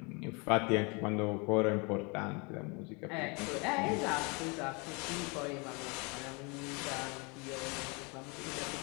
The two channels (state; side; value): quieter; right; 30.4 dB